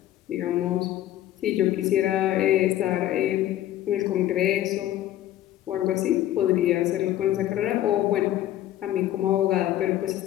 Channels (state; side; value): quieter; right; 13.2 dB